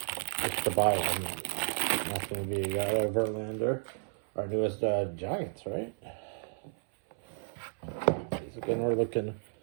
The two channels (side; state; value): left; silent; 56 dB below the other